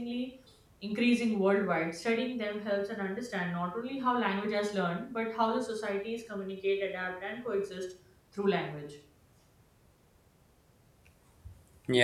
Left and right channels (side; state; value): both; identical; correlation 1.00